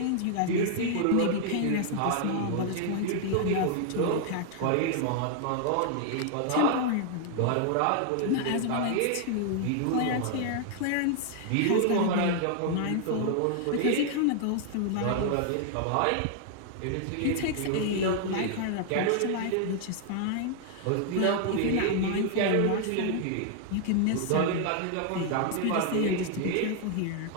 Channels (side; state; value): both; different; correlation 0.00